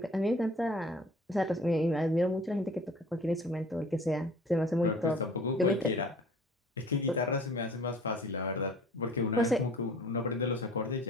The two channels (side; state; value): both; normal; correlation 0.48